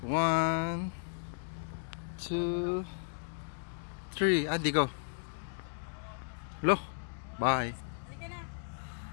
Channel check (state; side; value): silent; right; digital silence